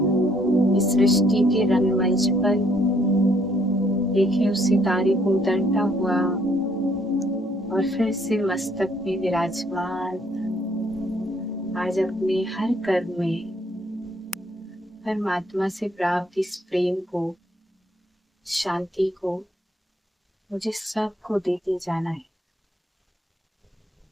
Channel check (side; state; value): both; normal; correlation 0.66